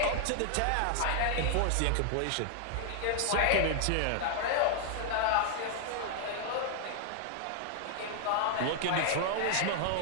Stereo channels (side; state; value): both; different; correlation 0.00